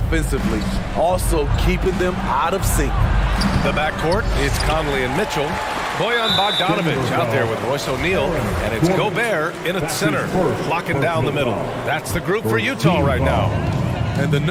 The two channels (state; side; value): identical; both; correlation 1.00